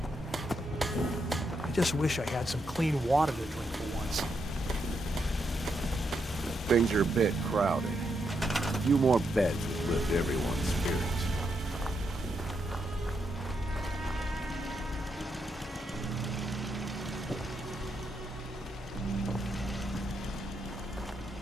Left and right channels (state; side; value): normal; both; correlation 0.81